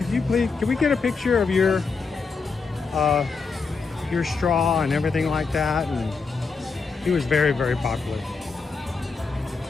we get a picture of your straw and everything like that? And he was very, very popular.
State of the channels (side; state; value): right; quieter; 4.7 dB